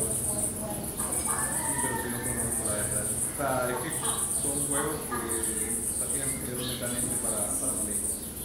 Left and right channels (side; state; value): both; identical; correlation 1.00